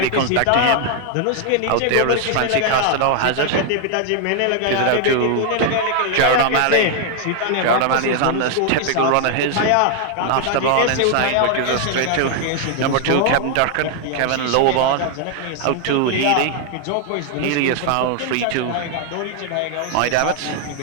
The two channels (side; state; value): both; different; correlation 0.00